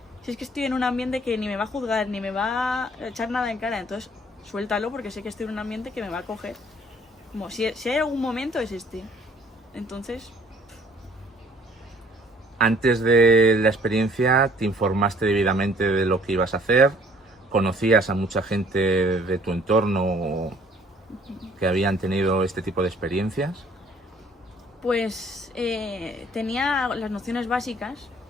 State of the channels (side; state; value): both; normal; correlation 0.58